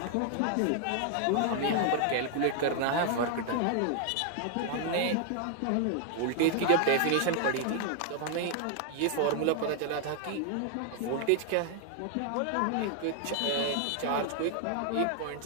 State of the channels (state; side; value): different; both; correlation 0.00